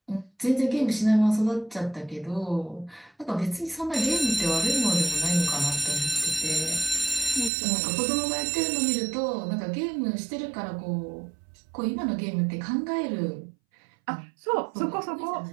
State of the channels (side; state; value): left; drops out; at 7.5 s